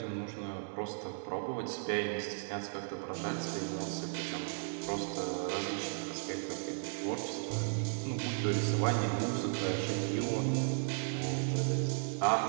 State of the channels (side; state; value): left; silent; 54 dB below the other